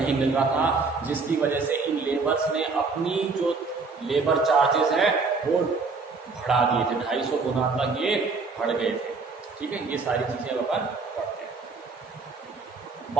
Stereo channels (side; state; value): left; quieter; 4.3 dB